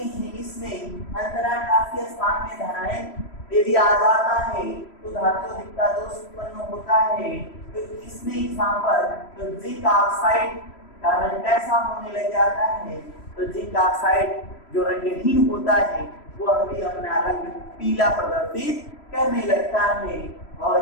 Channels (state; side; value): late; right; 3.1 ms